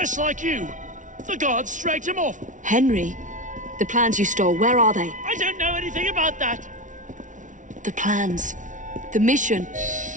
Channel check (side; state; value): left; late; 0.37 ms